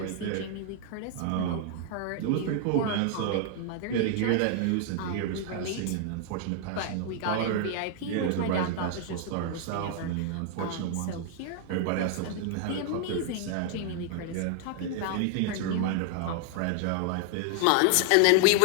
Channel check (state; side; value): different; both; correlation 0.00